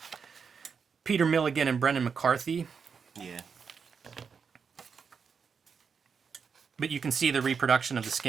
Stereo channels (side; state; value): left; quieter; 6.0 dB